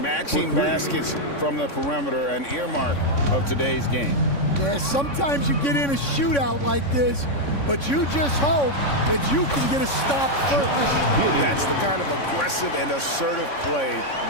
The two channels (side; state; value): right; late; 3.6 ms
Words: baskets from the perimeter, an earmark of today's game. Yeah, sometimes you get in a shootout like this, but you just hope that you can get a stop first. That's the kind of aggressive and assertive play